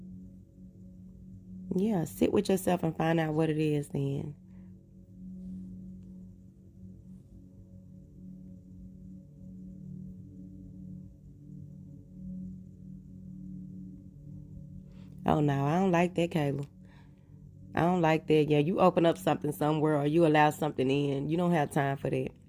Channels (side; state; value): both; identical; correlation 1.00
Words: Yeah, sit with yourself and find out what it is then. Oh no, I don't like that, Kayla. I don't like that. Yeah, you open up something somewhere or you allow something in. You don't have time for that.